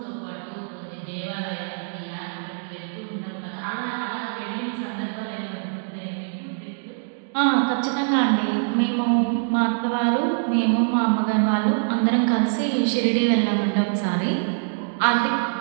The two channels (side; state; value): left; silent; digital silence